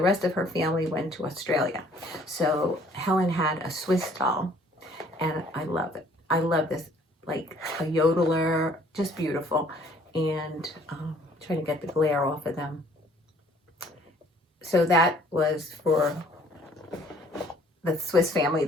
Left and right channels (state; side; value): normal; both; correlation 0.58